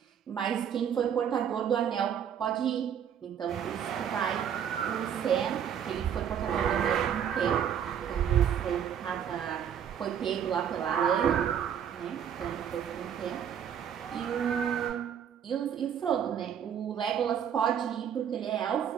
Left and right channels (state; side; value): quieter; left; 8.7 dB